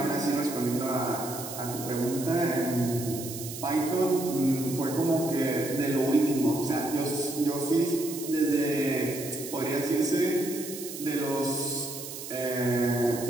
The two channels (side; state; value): right; noise; hiss, 10 dB below the sound